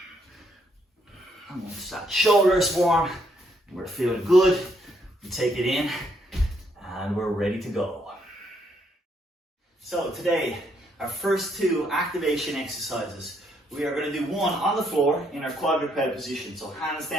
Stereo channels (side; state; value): both; normal; correlation 0.73